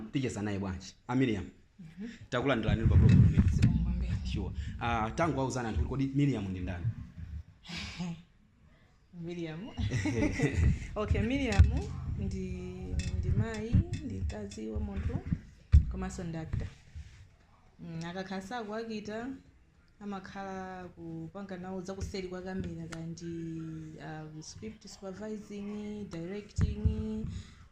ticheza naye bwanji. Miriam. Takulandirani pa program imene. Sure. Tangu wauzana anthu kodi Miriam ndi ndani? Miriam. Okay, Miriam ndi mai, ndi kazi wa munthu komanso ndi actor. Akakhala kuakita amakhala kupanga nawo zakuseri kwa kamera kandi script supervising, directing,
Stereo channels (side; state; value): both; identical; correlation 1.00